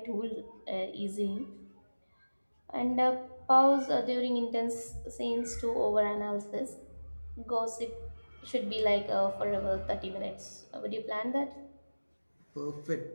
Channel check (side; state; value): both; inverted; correlation -1.00